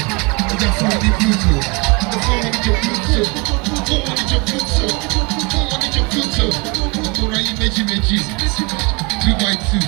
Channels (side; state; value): left; quieter; 29.0 dB